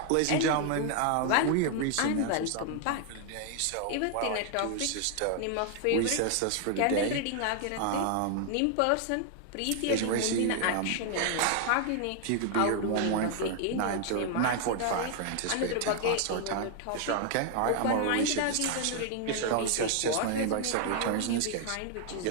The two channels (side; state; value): both; different; correlation 0.00